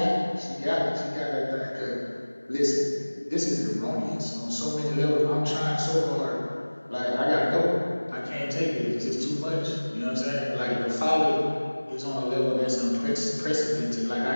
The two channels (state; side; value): inverted; both; correlation -1.00